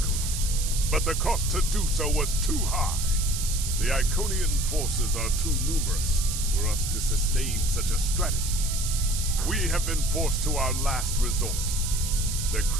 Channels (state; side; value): noise; right; hiss, 5 dB below the sound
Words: but the cost to do so was too high. The Iconian forces are too numerous for us to sustain such a strategy. We have been forced to our last resort. The